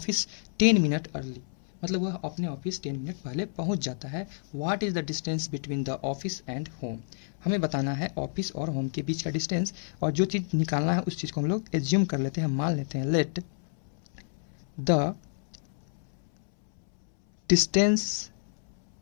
10 minute early, मतलब वह अपने ऑफिस 10 मिनट पहले पहुंच जाता है। What is the distance between the office and home, हमें बताना है ऑफिस और होम के बीच का डिस्टेंस। और जो चीज़ निकालना है उस चीज़ को हम लोग एज्यूम कर लेते हैं, मान लेते हैं। Let the distance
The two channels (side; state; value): right; silent; 58 dB below the other